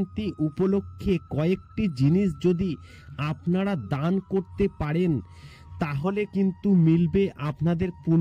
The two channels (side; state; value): both; identical; correlation 1.00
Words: উপলক্ষে কয়েকটি জিনিস যদি আপনারা দান করতে পারেন তাহলে কিন্তু মিলবে আপনাদের